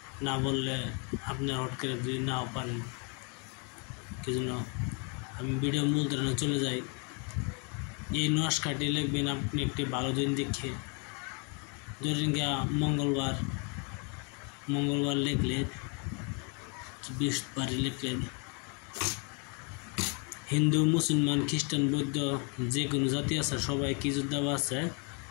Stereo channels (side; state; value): right; quieter; 35.6 dB